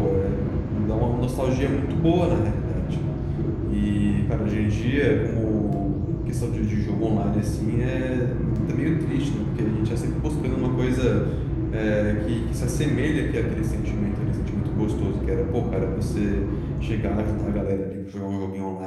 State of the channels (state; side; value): identical; both; correlation 1.00